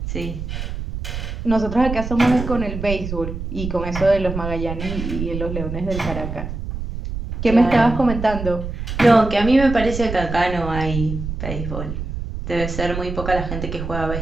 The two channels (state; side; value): noise; right; rumble, 6 dB below the sound